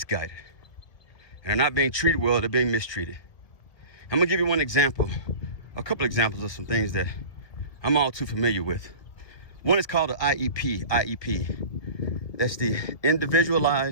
And they're not being treated well, they're being mistreated. I'm gonna give you one example, a couple examples of some things that I'm all too familiar with. One is called the IEP. That's the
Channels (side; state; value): right; late; 1.7 ms